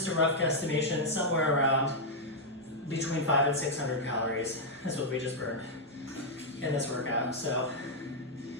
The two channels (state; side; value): normal; both; correlation -0.04